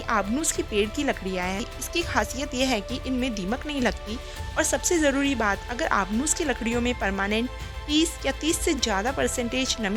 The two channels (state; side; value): identical; both; correlation 1.00